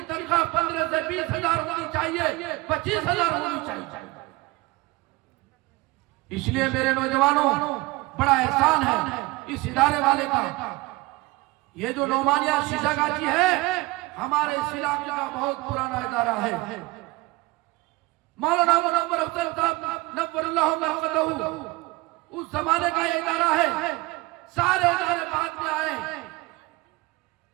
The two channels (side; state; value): left; quieter; 21.8 dB